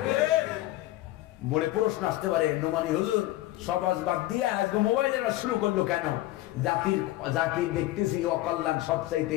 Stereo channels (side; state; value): right; quieter; 16.3 dB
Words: মনে প্রশ্ন আসতে পারে, নোমানি হুজুর সবাজ বাদ দিয়ে আজকে মোবাইলের শুরু করলো কেন? জাতির দেখতেছি অকল্যাণ